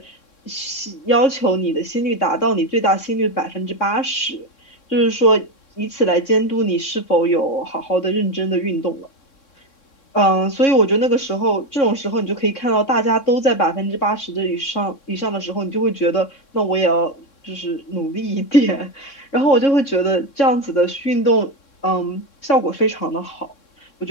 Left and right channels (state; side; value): late; right; 3.6 ms